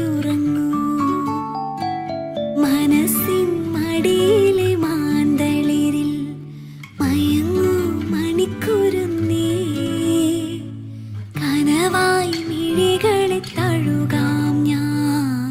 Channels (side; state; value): both; identical; correlation 1.00